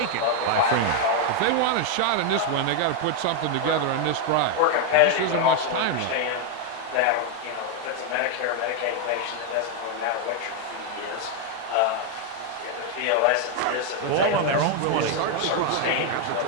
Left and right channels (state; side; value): different; both; correlation 0.01